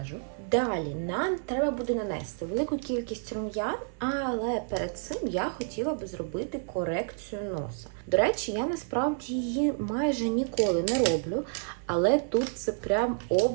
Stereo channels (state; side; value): silent; left; 58 dB below the other